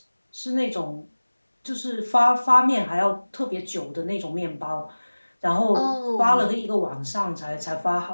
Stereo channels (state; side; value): inverted; both; correlation -1.00